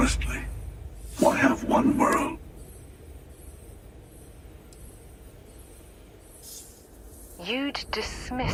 Why have one world? You'd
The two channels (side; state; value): both; identical; correlation 1.00